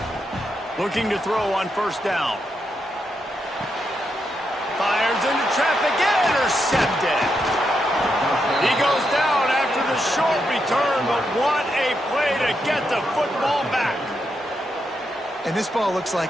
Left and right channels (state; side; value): normal; both; correlation 0.83